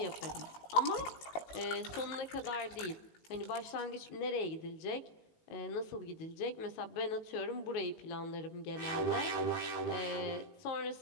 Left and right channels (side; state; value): right; late; 19 ms